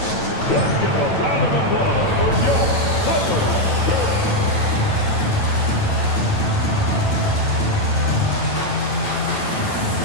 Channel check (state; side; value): late; right; 9.1 ms